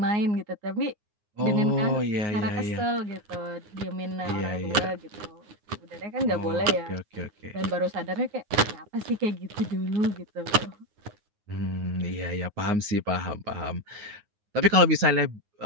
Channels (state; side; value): late; left; 9.6 ms